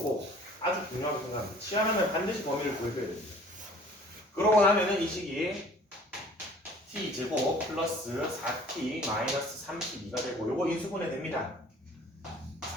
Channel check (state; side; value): normal; both; correlation 0.51